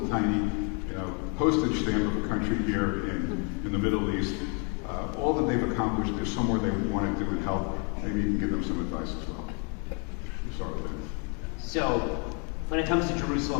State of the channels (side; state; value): right; quieter; 36.8 dB